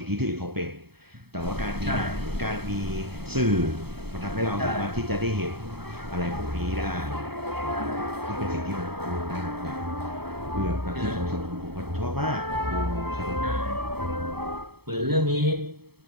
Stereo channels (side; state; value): left; late; 0.97 ms